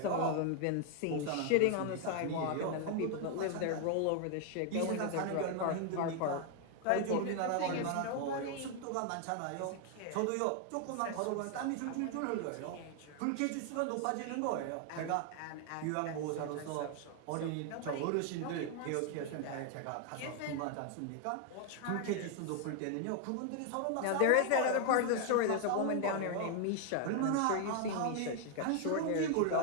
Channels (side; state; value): both; different; correlation 0.00